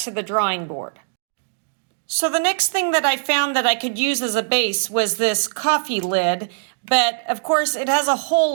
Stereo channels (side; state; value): left; silent; digital silence